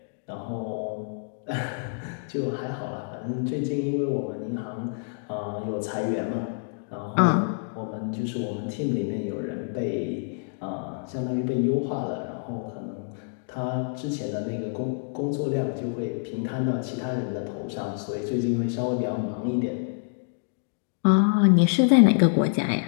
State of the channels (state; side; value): silent; right; digital silence